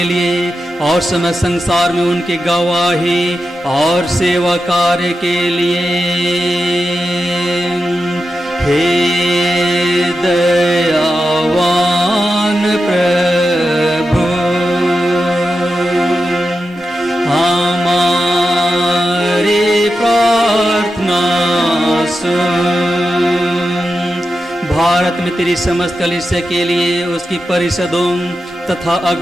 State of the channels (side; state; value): both; normal; correlation 0.89